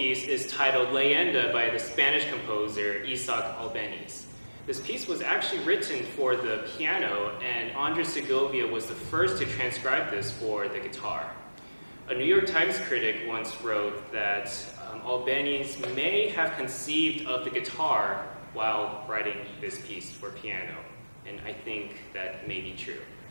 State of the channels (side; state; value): both; inverted; correlation -1.00